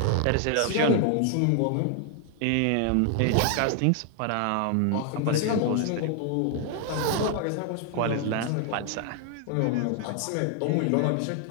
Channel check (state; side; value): different; both; correlation 0.00